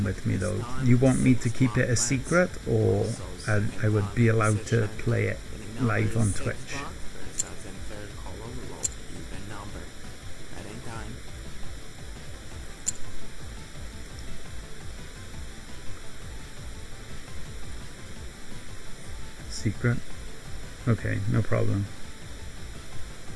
with me though, you want me to keep it a secret, or I would be allowed to play it live on Twitch? First dozen, third column, low, even number. At any time. Secret? Okay, no problem.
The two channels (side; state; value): both; identical; correlation 1.00